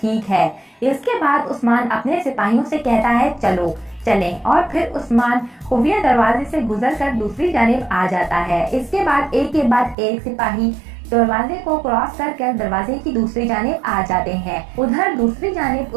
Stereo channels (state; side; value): drops out; left; at 10.0 s